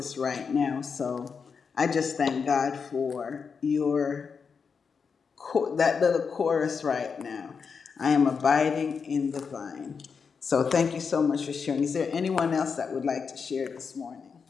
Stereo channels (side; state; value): right; quieter; 5.8 dB